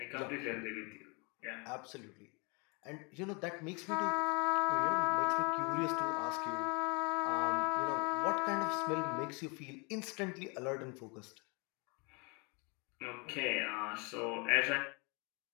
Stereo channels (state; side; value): quieter; right; 31.1 dB